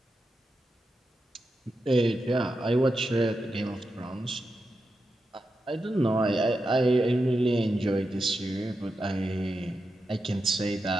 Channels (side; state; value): both; normal; correlation 0.88